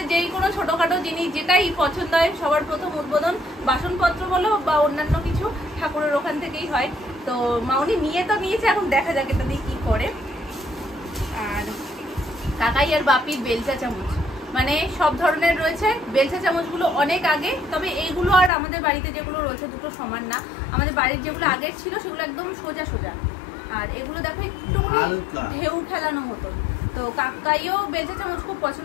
যেই কোনো ছোটোখাটো জিনিস যেটাই পছন্দ হয়, সবার প্রথম উদ্বোধন বাসনপত্র বলো বা অন্যান্য কিছু ঠাকুরের ওখান থেকেই হয়। তো মামুনি নিয়ে তো নিয়েছে, এখন দেখা যাক এটা দিয়ে কী করে। আর কাকাই আর বাপির বেলচা চামচ, মানে সব ধরনের রয়েছে। বেলচা চামচগুলো অনেক আগে, তবে এইগুলো আর আমাদের বাড়িতে যেগুলো রয়েছে দুটো সমান না। আমাদের বাড়ির যেগুলো আগের ছিল সেগুলো একদম সোজা সোজা, আর এগুলো দেখো একটুখানি ঢেউ খেলানো মতো। তো কাকাইও বেলচা চামচ খুব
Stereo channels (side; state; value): right; drops out; at 18.5 s